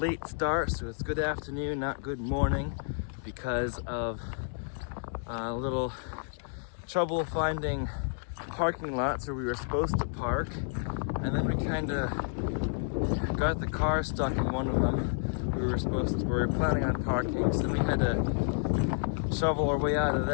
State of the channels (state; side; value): silent; right; digital silence